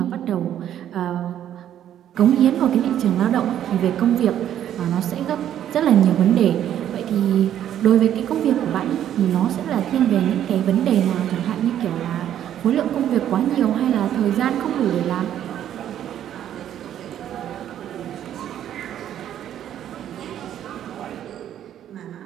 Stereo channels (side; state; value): left; quieter; 10.7 dB